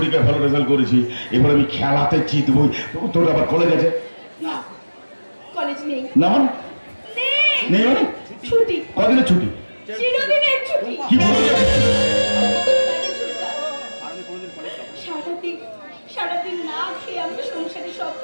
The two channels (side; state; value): both; inverted; correlation -1.00